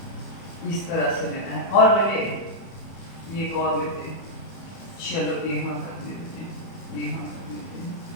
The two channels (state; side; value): late; right; 31 ms